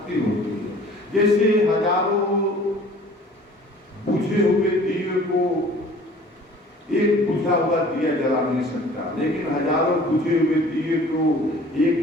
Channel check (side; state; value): both; normal; correlation 0.49